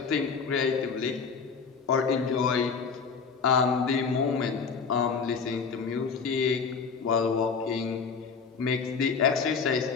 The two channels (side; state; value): right; quieter; 5.4 dB